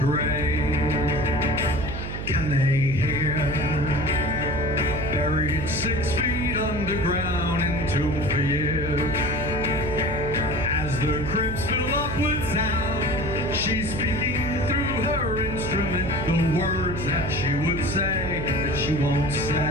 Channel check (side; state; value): right; noise; hum, 6 dB below the sound